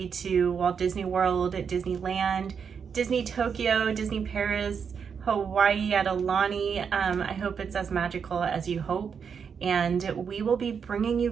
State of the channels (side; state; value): left; quieter; 6.6 dB